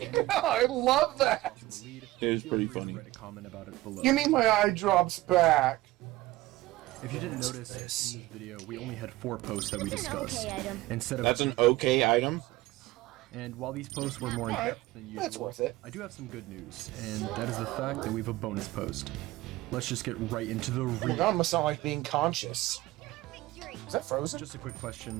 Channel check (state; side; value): quieter; left; 18.1 dB